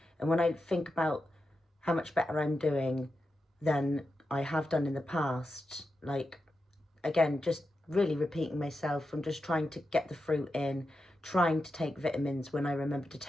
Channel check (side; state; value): both; normal; correlation 0.89